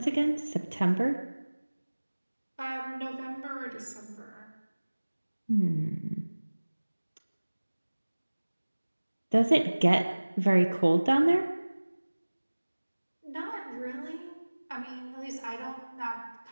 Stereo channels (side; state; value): both; inverted; correlation -1.00